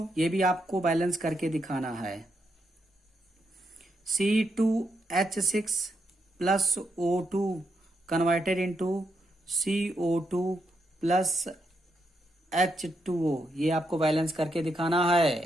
ये भी आपको बैलेंस करके दिखाना है। C2H6 plus O2 converted into CO2 plus H2O, ये आपको बैलेंस करके दिखाना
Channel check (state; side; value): normal; both; correlation 0.81